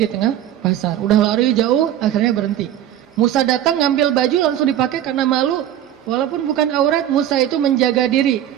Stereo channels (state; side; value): quieter; left; 11.5 dB